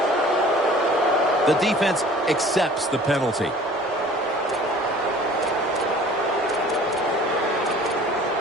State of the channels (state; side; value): noise; left; rumble, 30 dB below the sound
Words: The defense accepts the penalty.